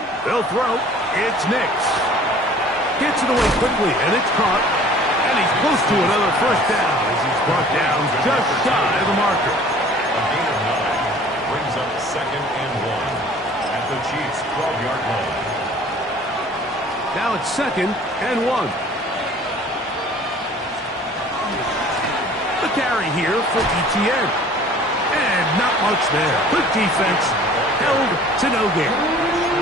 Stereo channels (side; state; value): both; normal; correlation 0.50